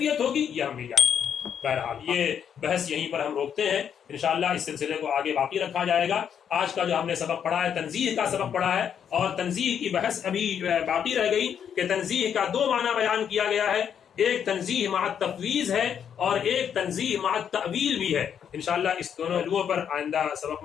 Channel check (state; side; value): quieter; right; 8.3 dB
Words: ہوگی یہ ہم نہیں جانتے۔ بہرحال یہ بحث یہیں پر ہم روکتے ہیں، انشاءاللہ اس سلسلے کو آگے باقی رکھا جائے گا۔ آج کا جو ہم نے سبق پڑھا ہے تنزیہ کا سبق پڑھا ہے، اور تنزیہ کی بحث ابھی باقی رہ گئی کہ تنزیہ کا دو معنی بیان کیا گیا ہے، ایک تنزیہ مع التفویض ہے اور ایک تنزیہ مع التأویل بھی ہے۔ انشاءاللہ اس دونوں پہلوؤں پر آئندہ سبق